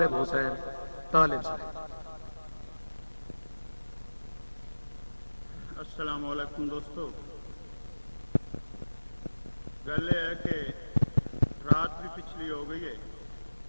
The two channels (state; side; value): inverted; both; correlation -1.00